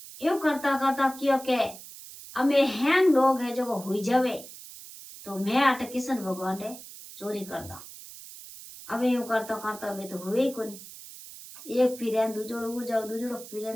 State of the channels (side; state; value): right; noise; hiss, 15 dB below the sound